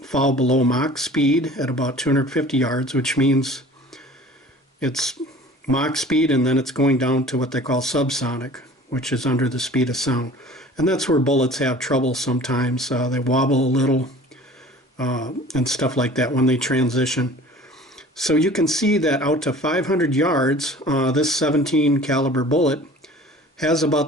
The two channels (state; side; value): normal; both; correlation 0.46